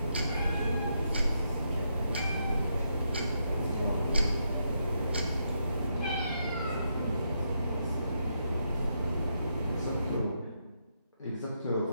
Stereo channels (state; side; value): inverted; both; correlation -0.80